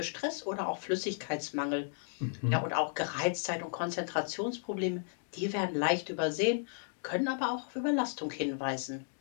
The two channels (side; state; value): right; silent; digital silence